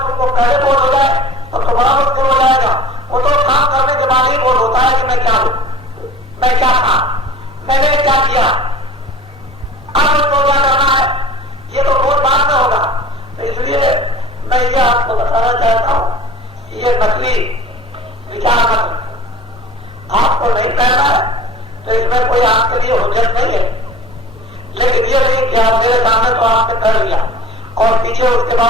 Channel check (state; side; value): normal; both; correlation 0.43